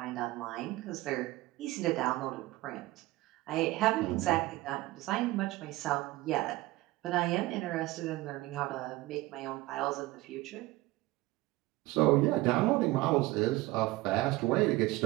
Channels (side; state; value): left; quieter; 19.1 dB